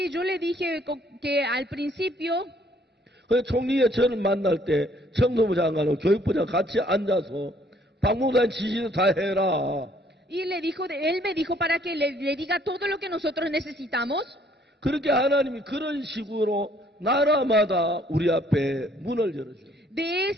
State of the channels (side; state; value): both; normal; correlation 0.63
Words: yo le dije que al principio 그 총리의 저를 만날 때 청소부 장관하고 교육부 장관 같이 앉아서 박목사님 지시도 다 해라. Y él me dijo para que le diga todo lo que nosotros necesitamos. 그렇게 하나님이 그런 식으로 나라마다 우리 앞에 문을 열어줘요. De